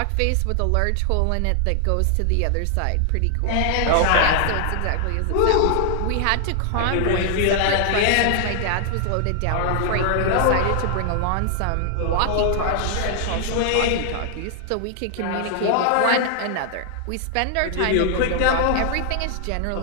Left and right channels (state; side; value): different; both; correlation 0.00